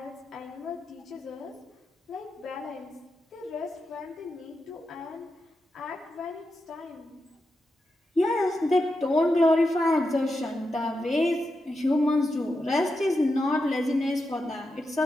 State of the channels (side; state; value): both; normal; correlation 0.88